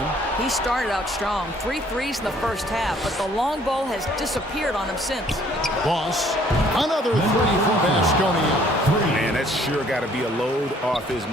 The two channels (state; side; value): normal; both; correlation 0.60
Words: He started out strong. 3 threes in the first half, but the long ball has disappeared on him since. Boss, another 3 for Baskonia. Man, that's sure got to be a load off his